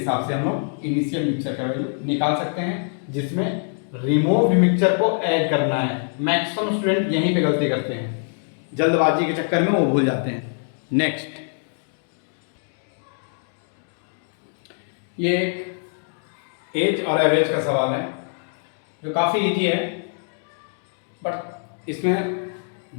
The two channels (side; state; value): right; silent; 61 dB below the other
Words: से हम लोग इनिशियल मिक्सचर का वैल्यू निकाल सकते हैं, जिसमें रिमूव मिक्सचर को ऐड करना है। मैक्सिमम स्टूडेंट यहीं पे गलती करते हैं, जल्दबाजी के चक्कर में वो भूल जाते हैं। नेक्स्ट, ये एक एज और एवरेज का सवाल है जो काफ़ी इजी है, बट इसमें